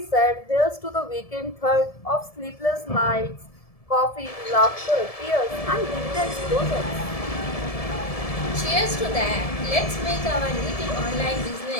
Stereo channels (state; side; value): late; right; 1.7 ms